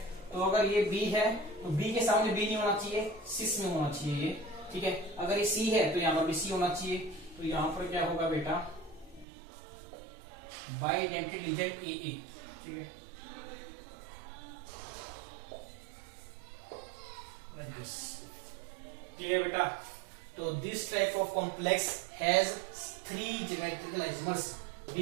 तो अगर ये B है तो B के सामने B नहीं होना चाहिए, सिस में होना चाहिए ये, ठीक है। अगर ये C है तो यहाँ पर भी C होना चाहिए। तो यहाँ पर क्या होगा बेटा, बाइडेंटेड लीजेंड AA, ठीक है। क्लियर बेटा? तो this type of complex has 3 geometrical isomers,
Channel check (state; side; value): drops out; left; at 9.2 s